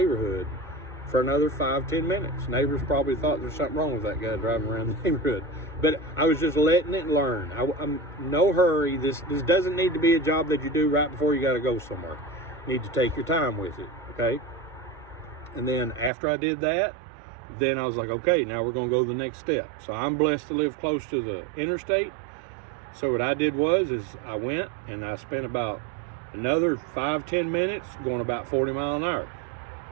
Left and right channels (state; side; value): drops out; left; at 16.1 s